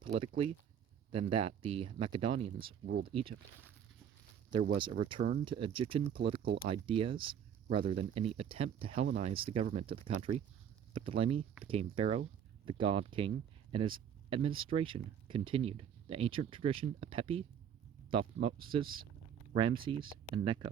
politically than that the Macedonians ruled Egypt. There was a return to Egyptian political ideas rather than any attempt to Hellenize the government of the country. Ptolemy became pharaoh, the god king, and his administration continued the ancient tradition of Pepi, Thutmose, Ramses, and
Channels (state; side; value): quieter; left; 8.6 dB